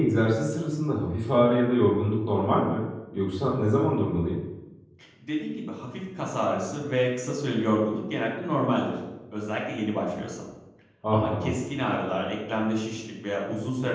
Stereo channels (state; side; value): identical; both; correlation 1.00